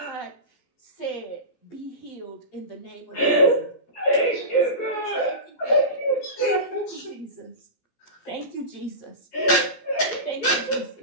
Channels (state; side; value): late; right; 17 ms